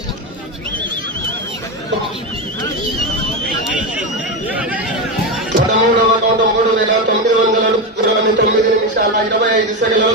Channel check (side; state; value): both; normal; correlation 0.13